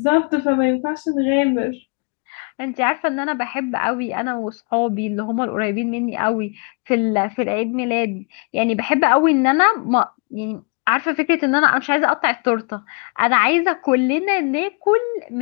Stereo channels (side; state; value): right; quieter; 34.1 dB